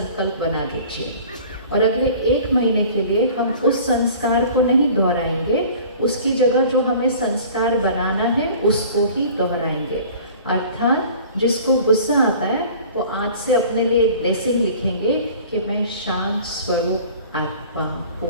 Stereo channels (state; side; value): inverted; both; correlation -0.46